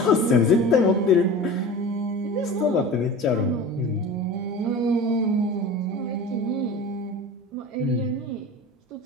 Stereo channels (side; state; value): both; normal; correlation 0.35